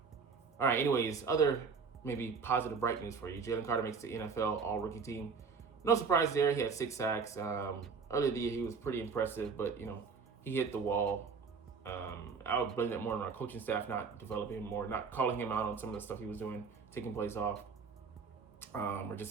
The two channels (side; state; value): left; quieter; 5.3 dB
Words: All right, anyways, other maybe positive, bright news for you. Jalen Carter makes the NFL All-Rookie team. No surprise there. He had 6 sacks. Earlier in the year, he was pretty impressive, but, he hit the wall. I would blame that more on our coaching staff not developing him more, not calling him out on some of the stuff he was doing, taking plays off, or